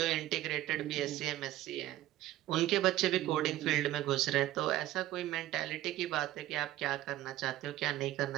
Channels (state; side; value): quieter; left; 14.7 dB